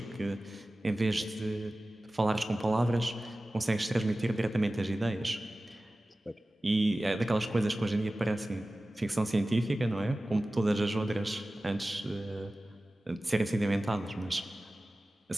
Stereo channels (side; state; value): both; normal; correlation 0.96